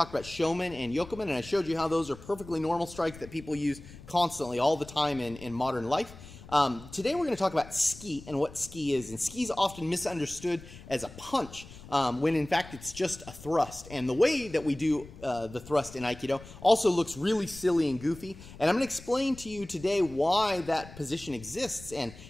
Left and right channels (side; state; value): left; noise; rumble, 17 dB below the sound